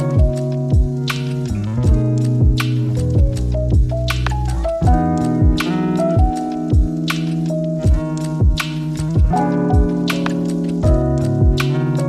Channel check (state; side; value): identical; both; correlation 1.00